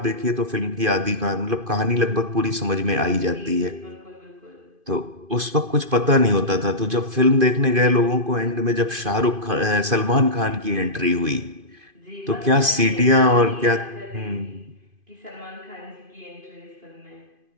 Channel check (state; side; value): late; left; 2.5 ms